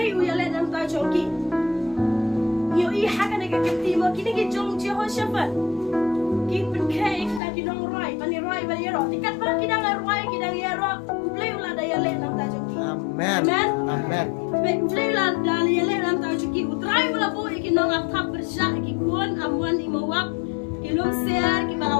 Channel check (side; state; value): right; drops out; at 7.4 s